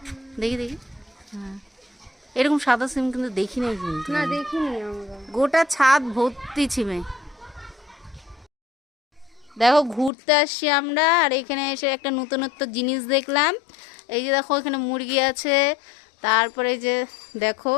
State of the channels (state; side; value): drops out; right; at 10.1 s